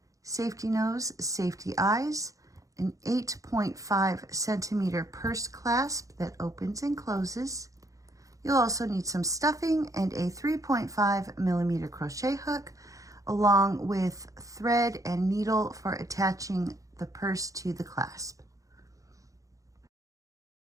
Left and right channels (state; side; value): late; left; 0.16 ms